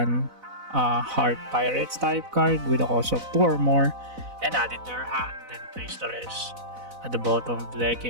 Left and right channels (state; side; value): late; left; 4.0 ms